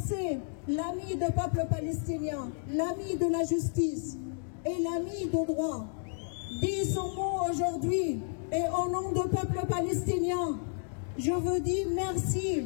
l'ami du peuple palestinien, l'ami de la justice et l'ami du droit, dit son mot aujourd'hui et au nom du peuple palestinien, je vous dis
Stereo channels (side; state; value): right; silent; digital silence